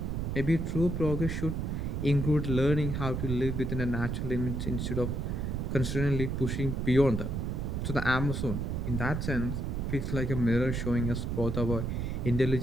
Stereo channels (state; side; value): noise; right; rumble, 1 dB below the sound